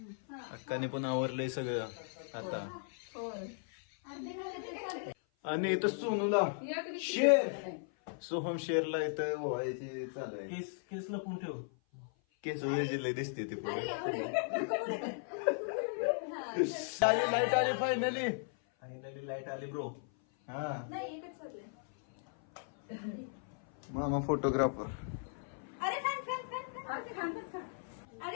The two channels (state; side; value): silent; right; 53 dB below the other